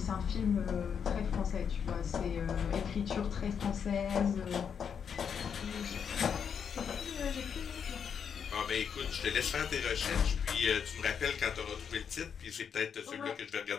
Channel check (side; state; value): right; quieter; 7.2 dB